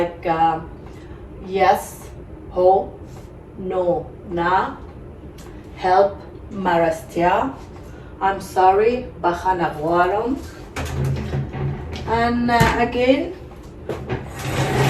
yes, ho, no, na, help, marastia, I'm sorry, bakhanagwarum, and again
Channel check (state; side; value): identical; both; correlation 1.00